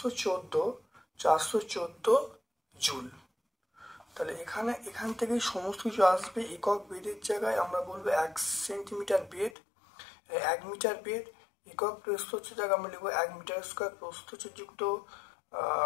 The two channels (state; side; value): drops out; right; at 9.6 s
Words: জুল। তাহলে এখান থেকেই সমস্ত কিছু আসবে। একক বেদের জায়গায় আমরা বলবো 1 সেন্টিমিটার বেদ, 1 মিটার বেদ। একক প্রস্থচ্ছেদ জায়গায় আমরা লিখবো 1 মিটার স্কোয়ার প্রস্থচ্ছেদযুক্ত,